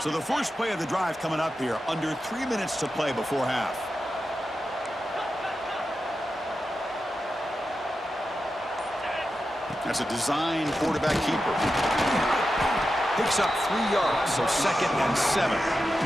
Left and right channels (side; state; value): both; normal; correlation 0.90